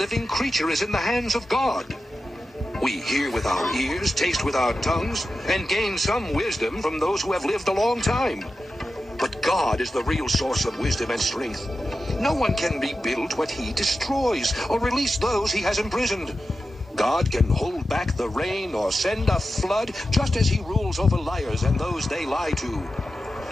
creature is in the hands of God. We hear with our ears, taste with our tongues, and gain some wisdom from those who have lived a long time. But God is the real source of wisdom and strength. No one can rebuild what he destroys or release those he has imprisoned. God can hold back the rain or send a flood just as he rules over liars and those they lie to.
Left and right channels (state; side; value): normal; both; correlation 0.91